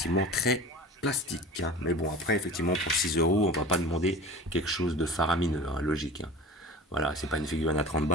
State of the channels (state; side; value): normal; both; correlation 0.38